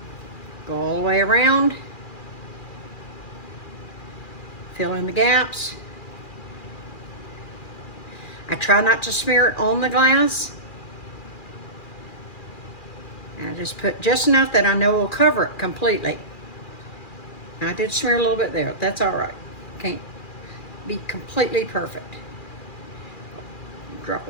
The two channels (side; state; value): right; late; 2.4 ms